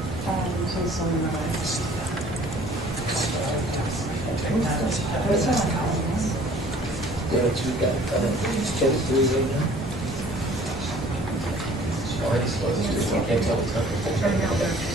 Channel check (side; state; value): both; normal; correlation 0.52